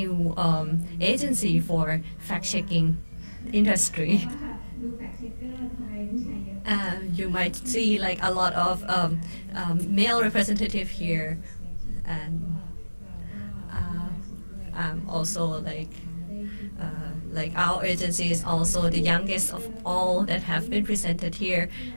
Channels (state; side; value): inverted; both; correlation -1.00